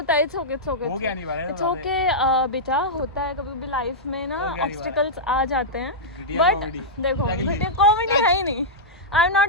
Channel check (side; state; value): both; normal; correlation -0.10